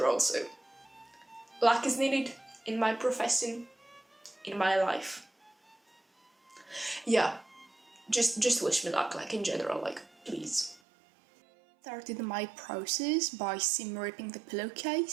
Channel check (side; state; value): left; drops out; at 10.8 s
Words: all, so luck is needed in my profession, in my life. Yeah, just wish me luck, like in general, like please. Started my process by seam ripping the